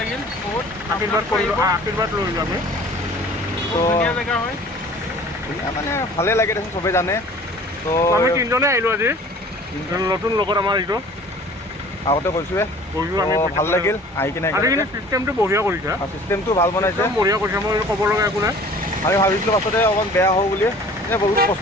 বহুত আশীৰ্বাদ কৰিলোঁ আশীৰ্বাদ লৈলোঁ আমি তো ধুনীয়া জেগা হয় মানে ভালে লাগে দেখোন চবেই জানে তো আমি তিনিজনে আহিলোঁ আজি নতুন লগত আমাৰ এইটো আগতে কৈছোঁৱে কৰিলোঁ আমি ভাল লাগিল আহি কিনে আজি কিন্তু চিষ্টেমটো বঢ়িয়া কৰিছে চিষ্টেমটো ভাল বনাইছে একদম বঢ়িয়া কৰিছে মই ক'ব লগা একো নাই আমি ভাবিছিলোঁ পাছতে অকণ বেয়া হ'ব বুলি এনে বহুত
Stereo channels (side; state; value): both; normal; correlation 0.48